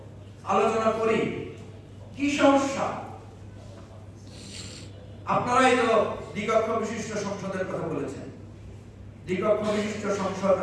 আলোচনা করি কি সমস্যা। আপনারাই তো দ্বিকক্ষ বিশিষ্ট সংসদের কথা বলেছেন। দ্বিকক্ষ বিশিষ্ট সংসদ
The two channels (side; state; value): both; identical; correlation 1.00